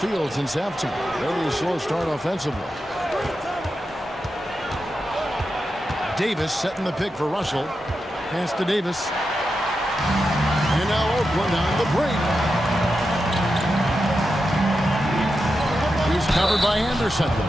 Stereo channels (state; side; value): normal; both; correlation 0.89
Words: since halftime. Very slow start offensively. Davis setting the pick for Russell. Pass to Davis. And now Oakland on the break. He's covered by Anderson.